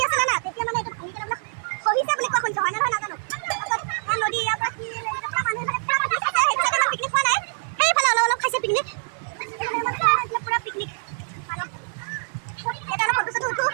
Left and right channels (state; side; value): silent; left; digital silence